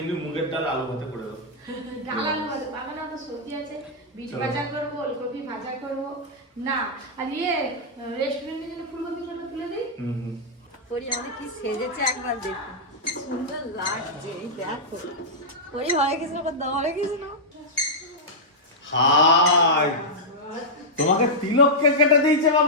মুগের ডাল আলু ভাতে করে দাও। ডাল আলু ভাতে পাবে না, তো সবজি আছে, বিট ভাজা করবো, ওলকপি ভাজা করবো না। আর রেস্টুরেন্টের জন্য ফুলকপিটা তুলে দিই। পরি আমাদের কি সেজেছে একবার দেখো, সুন্দর লাগছে। এই দেখো পরি, হরে কৃষ্ণ করতে, হরে কৃষ্ণ। হাই, তোমাকে তিলক কেটে দিয়েছে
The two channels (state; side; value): normal; both; correlation -0.08